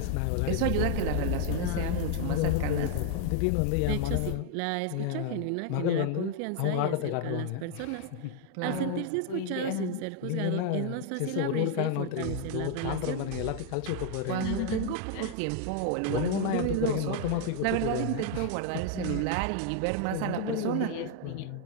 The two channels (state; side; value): different; both; correlation 0.00